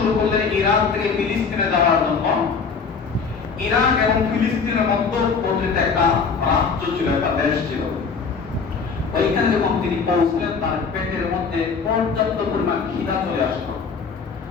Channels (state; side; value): quieter; right; 5.4 dB